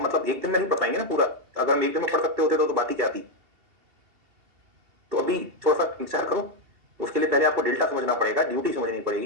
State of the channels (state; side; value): late; left; 2.8 ms